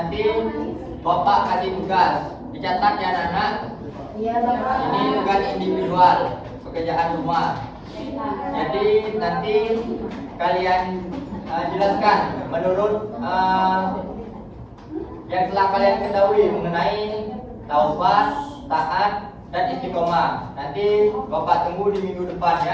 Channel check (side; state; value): both; identical; correlation 1.00